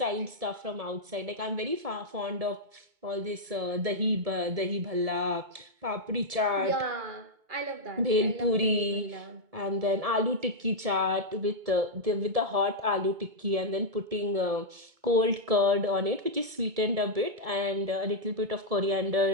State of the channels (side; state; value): left; late; 1.7 ms